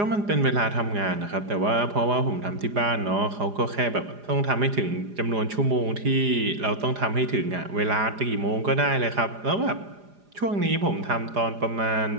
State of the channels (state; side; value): late; left; 4.9 ms